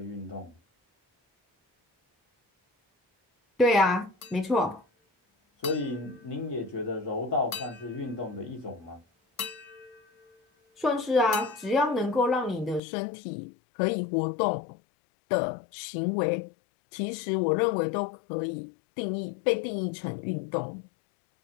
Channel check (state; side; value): drops out; right; at 12.8 s